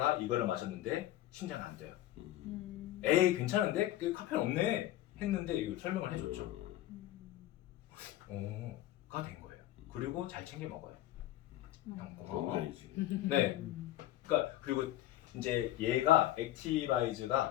이거를 마셨는데 심장이 안 돼요. 에이 괜찮은데? 카페인 없네 했는데 이걸 설명을 해줬죠. 가 된 거예요. 그리고 잘 챙겨 먹어요. 형 고마워. 네. 그러니까 그리고 이제 얘가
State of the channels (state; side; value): quieter; right; 14.4 dB